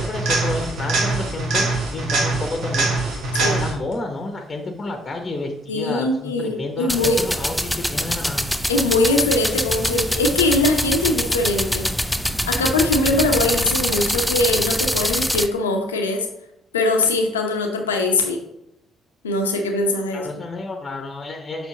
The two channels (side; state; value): both; normal; correlation 0.52